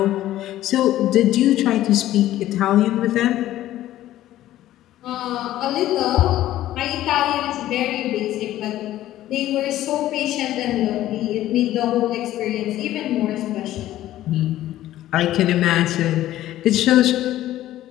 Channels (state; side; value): quieter; right; 13.9 dB